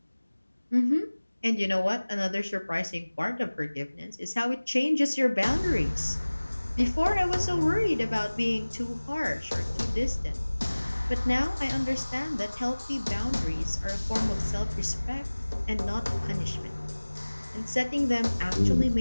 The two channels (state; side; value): inverted; both; correlation -1.00